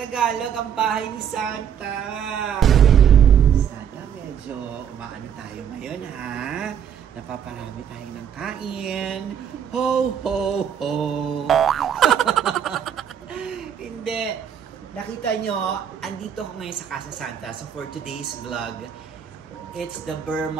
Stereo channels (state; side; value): quieter; left; 8.6 dB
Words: ang bahay ni Santa. Sana medyo umaano tayo ngayon ha. Napaparami tayo ng kain. Ho, ho, ho! Hindi. Nakita nyo, andito ako ngayon sa Casa Santa. So for today's vlog, it's the Burr